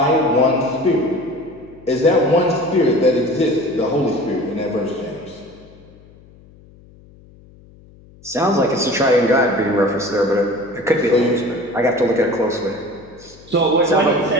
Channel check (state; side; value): noise; left; hum, 25 dB below the sound